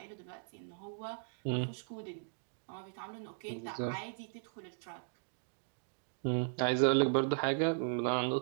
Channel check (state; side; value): silent; left; digital silence